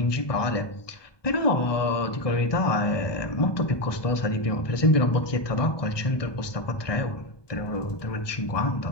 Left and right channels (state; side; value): late; right; 1.2 ms